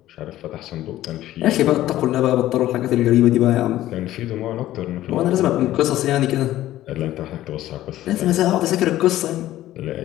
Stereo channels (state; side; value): quieter; right; 14.3 dB